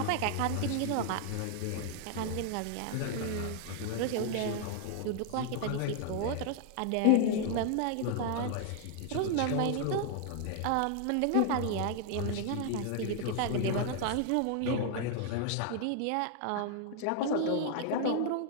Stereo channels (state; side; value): different; both; correlation 0.00